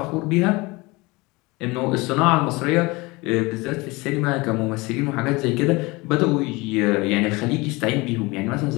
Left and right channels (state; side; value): quieter; right; 23.8 dB